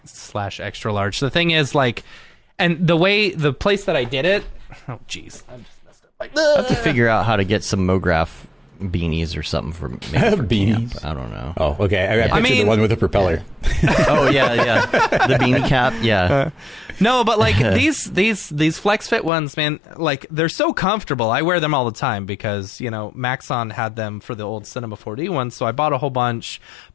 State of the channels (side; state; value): right; drops out; at 19.3 s